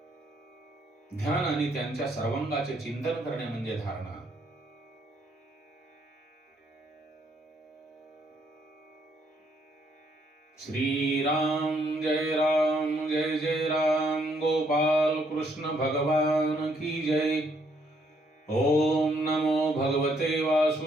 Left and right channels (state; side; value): normal; both; correlation 0.70